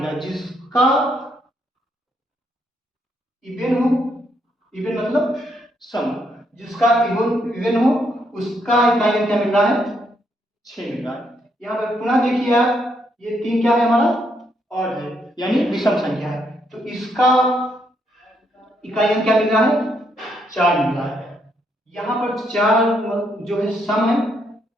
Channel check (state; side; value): normal; both; correlation 0.75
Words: जिसका इवन हो, इवन मतलब सम, जिसका इवन इवन हो उसका इकाई अंक क्या मिल रहा है, 6 मिल रहा है। यहाँ पर पुनः देखिए आप, ये 3 क्या है हमारा, और है, यानी विषम संख्या है, तो इसका इकाई अंक क्या मिल रहा है, 4 मिल रहा है। यहाँ पर 4 जो है सम है,